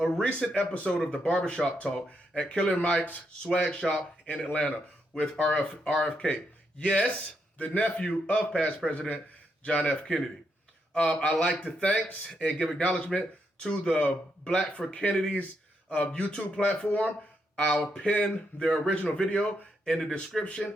recent episode of the Barbershop Talk at Killer Mike's swag shop in Atlanta with RFK. Yes, the nephew of past President John F. Kennedy. I'd like to thank and give acknowledgement to the Black for Kennedy's YouTube platform. I'll pin their original video in the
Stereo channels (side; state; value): both; normal; correlation 0.80